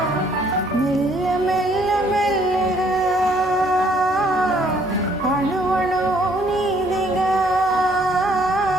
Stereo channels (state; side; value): normal; both; correlation 0.64